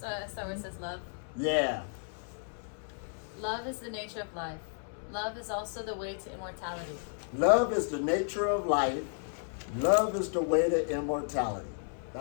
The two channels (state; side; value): silent; right; 56 dB below the other